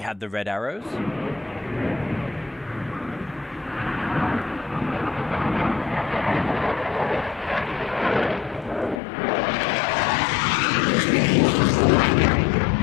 had the red arrows.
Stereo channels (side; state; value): right; drops out; at 9.0 s